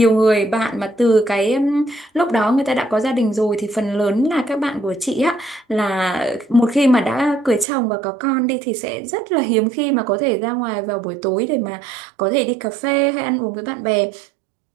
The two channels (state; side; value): drops out; left; at 7.7 s